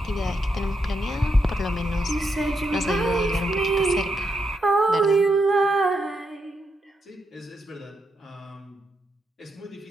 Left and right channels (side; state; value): both; normal; correlation 0.82